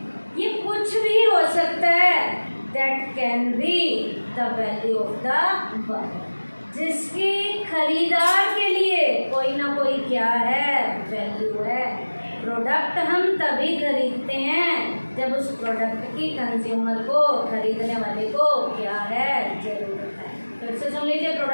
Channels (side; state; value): both; inverted; correlation -1.00